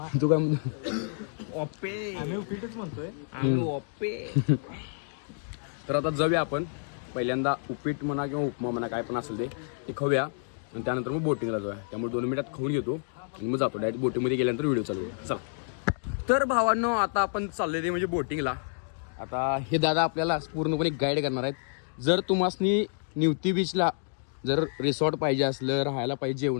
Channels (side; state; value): right; silent; digital silence